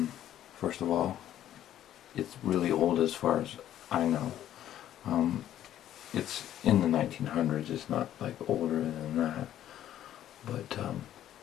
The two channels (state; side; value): quieter; right; 11.8 dB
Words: First of all, it's really old as far as I know. It's in the 1900s, it's not like older than that. But